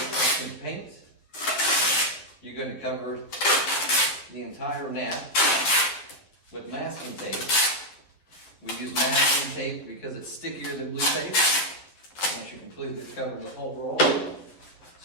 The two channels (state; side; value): late; right; 11 ms